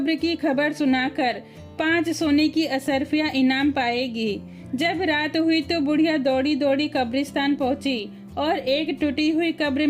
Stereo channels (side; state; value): both; identical; correlation 1.00